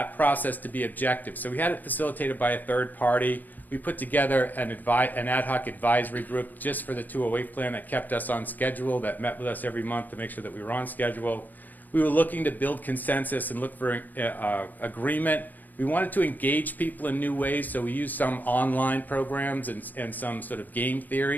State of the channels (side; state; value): right; late; 0.084 ms